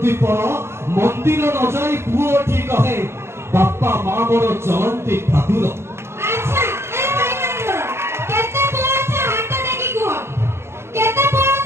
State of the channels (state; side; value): late; left; 0.12 ms